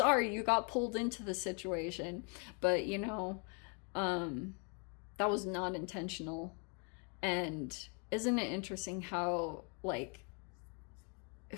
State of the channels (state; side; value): quieter; right; 37.4 dB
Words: you got pulled into the situation, but that was not intentional. And isn't it interesting how like